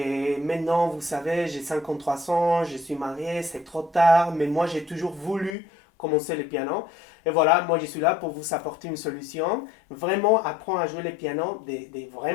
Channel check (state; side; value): drops out; right; at 5.6 s